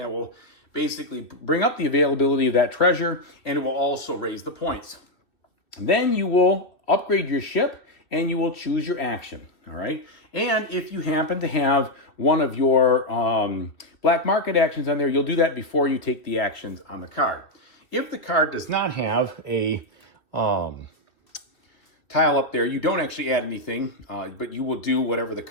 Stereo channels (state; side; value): late; right; 2.5 ms